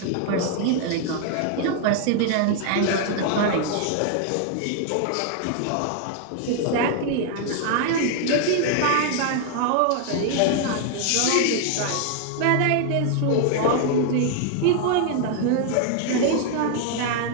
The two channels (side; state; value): both; different; correlation 0.00